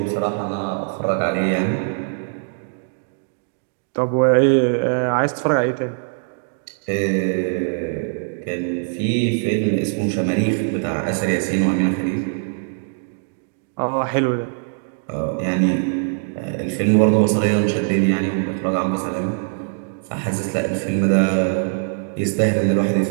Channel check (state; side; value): silent; left; digital silence